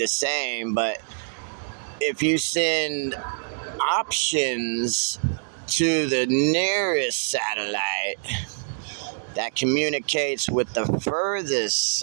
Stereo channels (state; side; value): silent; left; 62 dB below the other